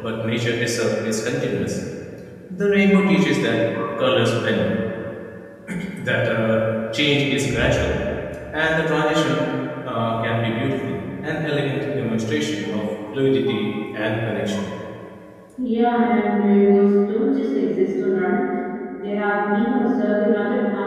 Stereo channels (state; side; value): identical; both; correlation 1.00